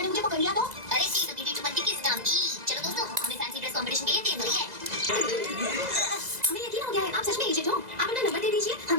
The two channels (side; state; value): left; late; 2.0 ms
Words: ने मुझे पकड़ लिया तो। अरे सी तो बीटी बनती किस काम की? चलो दोस्तों, हमें फैंसी ड्रेस कंपटीशन के लिए तैयार हो रही है। हमें यकीन हो गया है, आप सच में एजेंट हो। आप अपना नंबर दे दीजिए, हम